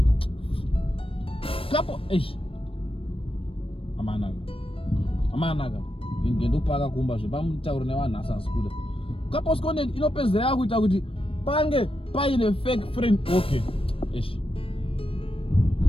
Couple Amanaga. Ingendo paga kumba zvepamutauro nevanhu asasikuda. Couples content inopedzera kuita kuti pange paine fake friend, okay, ish,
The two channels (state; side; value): late; right; 0.27 ms